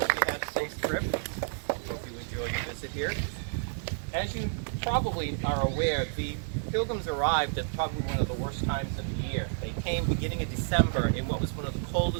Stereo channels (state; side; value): silent; left; digital silence